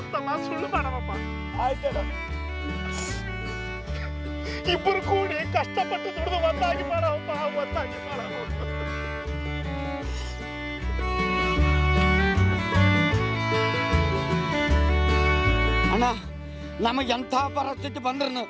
ಸುಳ್ಳು ಮಾಡಮಪ್ಪ. ಆಯ್ತಣ್ಣ. ಇಬ್ಬರು ಕೂಡಿ ಕಷ್ಟಪಟ್ಟು ದುಡಿದು ಒಂದಾಗಿ ಮಾಡವಪ್ಪ, ಒಂದಾಗಿ ಮಾಡವ. ಅಣ್ಣ ನಮಗೆ ಎಂಥ ಪರಿಸ್ಥಿತಿ ಬಂದ್ರು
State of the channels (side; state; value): both; identical; correlation 1.00